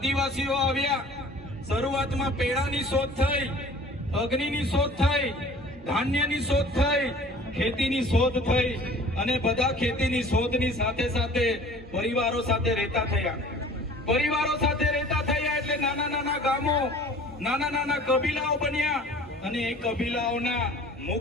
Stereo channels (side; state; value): both; normal; correlation 0.47